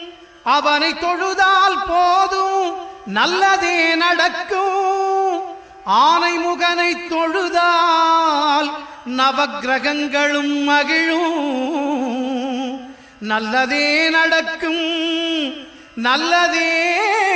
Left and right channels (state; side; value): identical; both; correlation 1.00